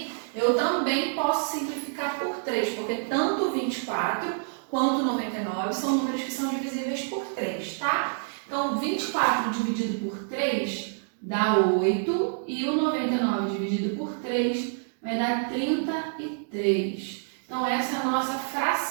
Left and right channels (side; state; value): left; silent; digital silence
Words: eu também posso simplificar por 3, porque tanto o 24 quanto o 99 são números que são divisíveis por 3, tá? Então, 24 dividido por 3 dá 8 e o 99 dividido por 3 vai dar 33. Então, essa é a nossa